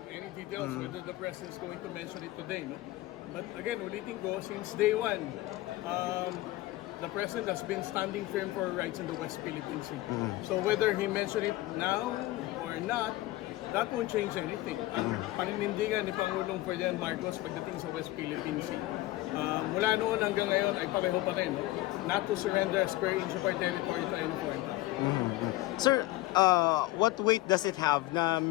any details whether the President is going to mention it today, no? But again, ulitin ko, since day one, the President has been standing firm for rights in the West Philippine Sea. So whether he mentioned it now or not, that won't change anything. Ang paninindigan ni Pangulong Ferdinand Marcos pagdating sa West Philippine Sea, mula noon hanggang ngayon ay pareho pa rin, not to surrender a square inch of our territory to any foreign power. Sir, what weight does it have na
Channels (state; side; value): quieter; right; 17.7 dB